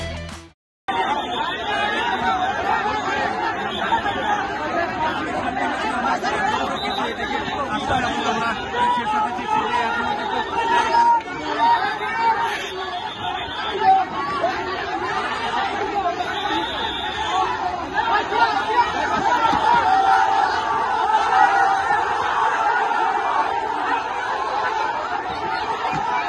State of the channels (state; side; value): identical; both; correlation 1.00